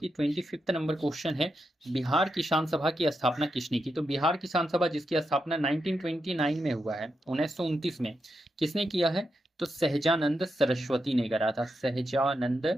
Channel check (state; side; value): normal; both; correlation 0.86